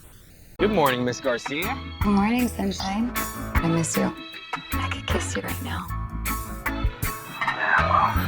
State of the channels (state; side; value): identical; both; correlation 1.00